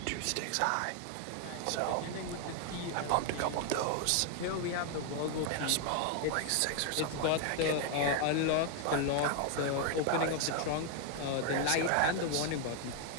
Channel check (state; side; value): different; both; correlation 0.00